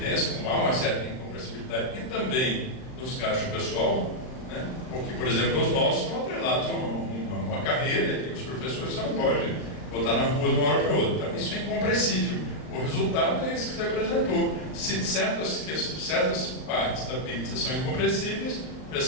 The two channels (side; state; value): right; late; 39 ms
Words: como há uma certa incompressibilidade, e também nos gastos pessoal, né? Porque, por exemplo, os nossos estão atrelados a uma carreira, que os professores não podem botar na rua de uma hora para outra. Então, isso é incompressível. O resultado é esse que você apresentou. Se certas partes da pizza são incompressíveis, a